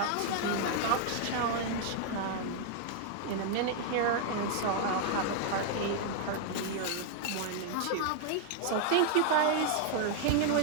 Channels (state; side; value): different; both; correlation 0.00